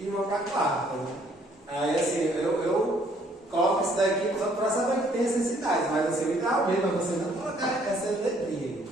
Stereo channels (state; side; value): normal; both; correlation 0.64